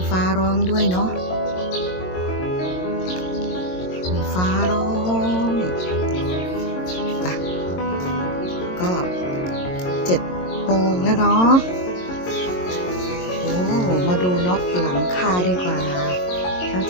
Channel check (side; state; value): right; late; 22 ms